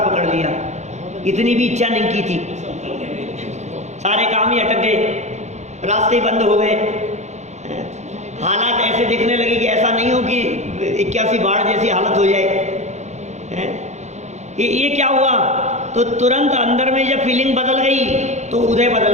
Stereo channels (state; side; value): late; left; 0.33 ms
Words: पकड़ लिया। इतनी भी इच्छा नहीं की थी, सारे काम ही अटक गए, रास्ते बंद हो गए, हालात ऐसे दिखने लगे कि ऐसा नहीं हो कि 81 बाढ़ जैसी हालत हो जाए। ये क्या हुआ? तो तुरंत अंदर में जब फीलिंग बदल गई तो उदय